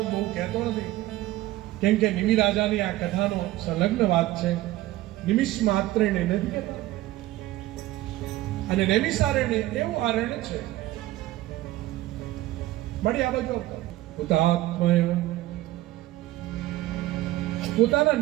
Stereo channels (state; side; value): quieter; left; 16.5 dB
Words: બહુ કહેતો નથી, કેમ કે નિમિ રાજાની આ કથાનો સંલગ્ન વાત છે. નિમિષ માત્ર ને નથી કહેતા. અને નૈમિષારણ્ય એવું આરણ્ય છે. મળી આ બાજુ હુતાત્મા પોતાના